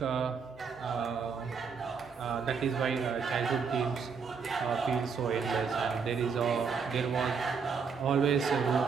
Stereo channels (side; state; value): left; quieter; 5.8 dB